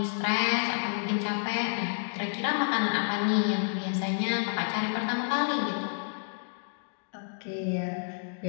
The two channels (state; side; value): silent; right; digital silence